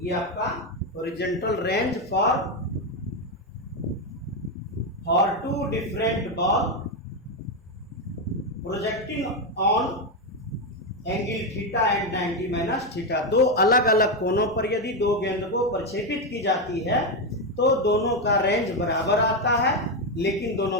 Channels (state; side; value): normal; both; correlation 0.08